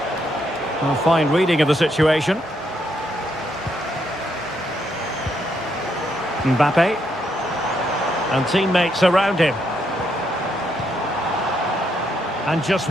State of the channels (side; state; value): both; normal; correlation 0.76